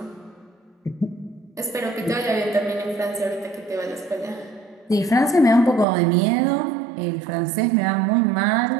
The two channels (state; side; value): drops out; left; at 5.9 s